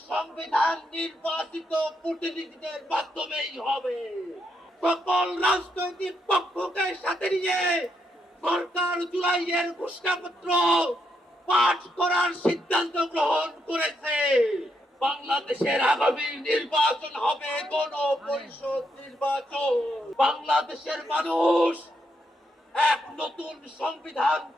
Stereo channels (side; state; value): both; normal; correlation 0.79